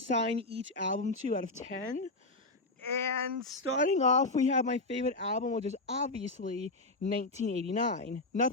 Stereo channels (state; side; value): quieter; right; 3.0 dB